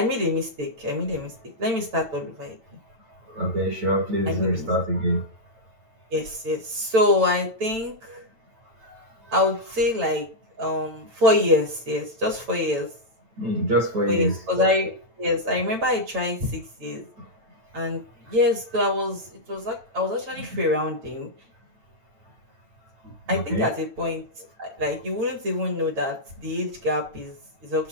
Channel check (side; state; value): left; late; 8.9 ms